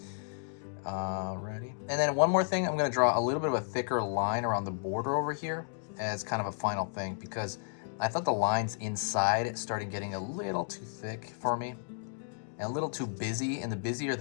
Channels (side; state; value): right; silent; digital silence